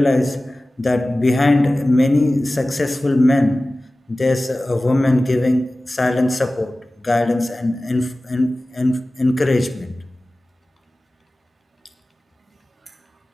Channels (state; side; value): normal; both; correlation 0.97